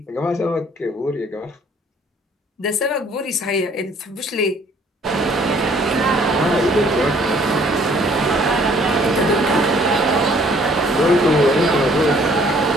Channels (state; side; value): normal; both; correlation 0.59